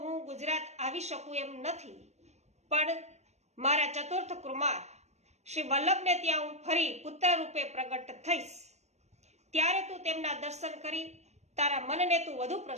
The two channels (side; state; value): left; late; 0.32 ms